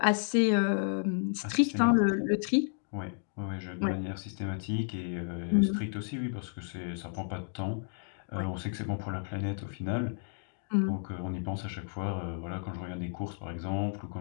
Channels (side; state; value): right; silent; digital silence